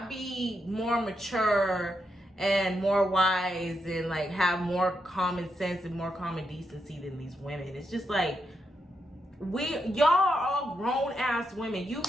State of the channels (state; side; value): normal; both; correlation 0.83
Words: be more mature and more wise and like have more common sense and more common decency than these women. It's just like, y'all are all grown ass women. You